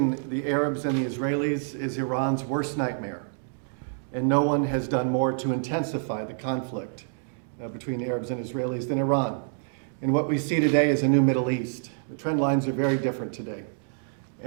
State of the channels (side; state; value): left; silent; digital silence